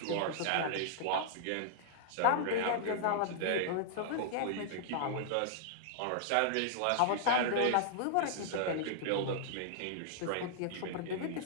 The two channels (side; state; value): both; different; correlation -0.01